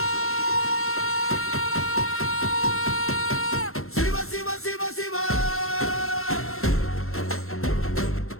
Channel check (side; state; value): right; late; 0.62 ms